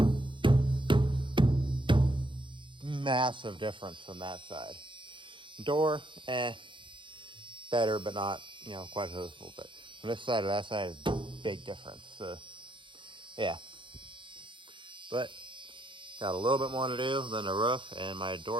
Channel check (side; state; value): left; late; 0.24 ms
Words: Massive difference from that side. Door, better, but not, quite as noticeable. But from this side to that side is big difference. Yeah. But got a little bit more to do than the roof and my